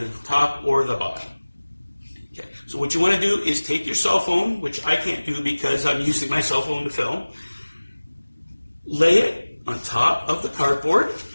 the top or the bottom. Okay, so what you want to do is take your cell phone, which I can't do because I'm using my cell phone to film, lay it on top of the cardboard,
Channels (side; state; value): both; inverted; correlation -1.00